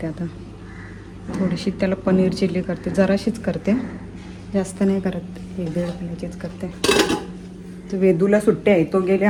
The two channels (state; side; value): identical; both; correlation 1.00